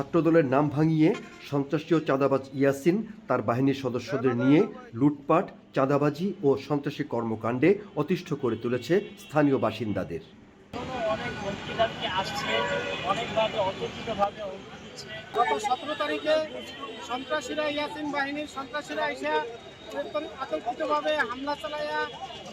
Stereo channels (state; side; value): identical; both; correlation 1.00